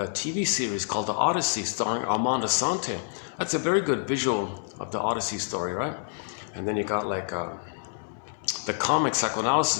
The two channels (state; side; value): silent; right; 59 dB below the other